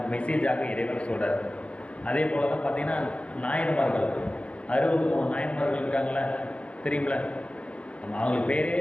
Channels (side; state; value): right; late; 0.061 ms